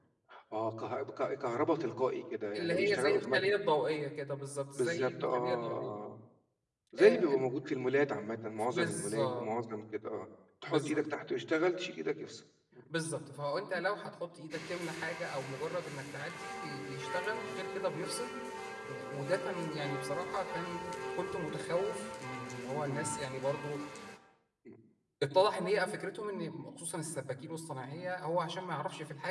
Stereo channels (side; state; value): both; identical; correlation 1.00